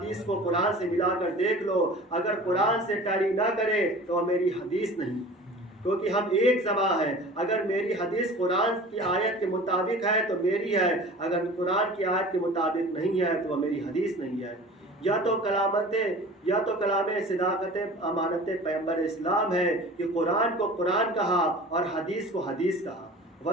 کو قرآن سے ملا کر دیکھ لو، اگر قرآن سے ٹیلی نہ کرے تو میری حدیث نہیں، کیونکہ ہم ایک زبان ہے۔ اگر میری حدیث قرآن کی آیت کے مطابق ہے تو میری ہے، اگر قرآن کی آیت کے مطابق نہیں ہے تو وہ میری حدیث نہیں ہے۔ یا تو کلام صداقت امانت پیغمبر اسلام ہے کہ قرآن کو قرآن کہا اور حدیث کو حدیث کہا،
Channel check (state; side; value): normal; both; correlation 0.41